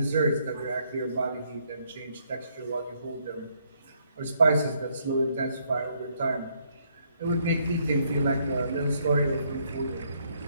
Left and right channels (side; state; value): both; inverted; correlation -0.71